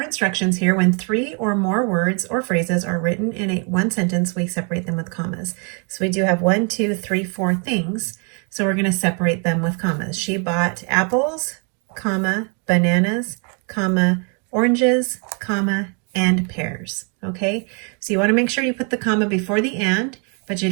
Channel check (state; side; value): quieter; left; 37.7 dB